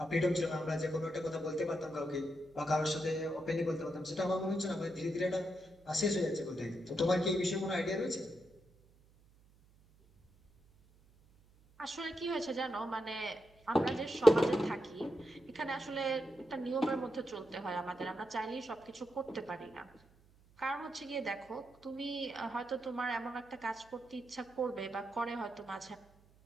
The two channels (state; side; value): noise; right; hum, 28 dB below the sound